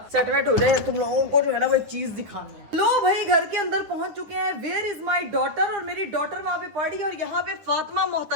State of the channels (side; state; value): left; late; 9.8 ms